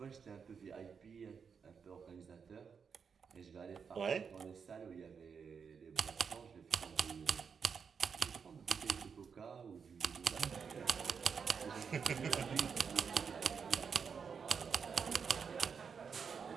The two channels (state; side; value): quieter; left; 6.2 dB